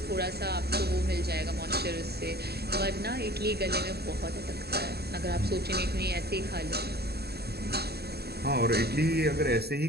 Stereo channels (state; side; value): late; left; 0.47 ms